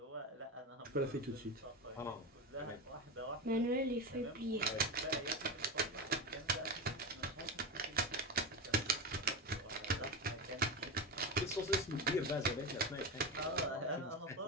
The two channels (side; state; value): both; normal; correlation 0.19